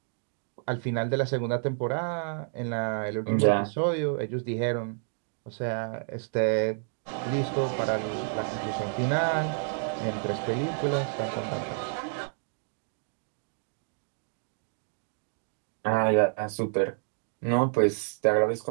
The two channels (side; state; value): left; silent; digital silence